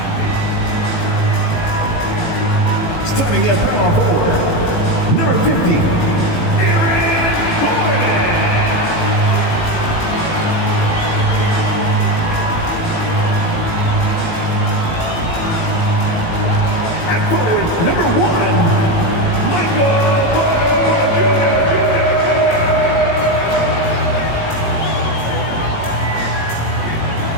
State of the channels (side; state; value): right; late; 18 ms